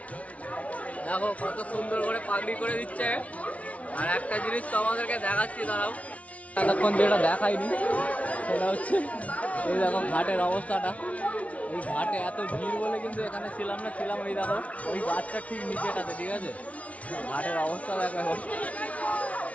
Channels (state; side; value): late; right; 0.066 ms